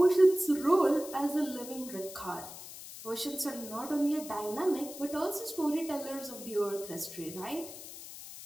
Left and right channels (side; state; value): left; noise; hiss, 13 dB below the sound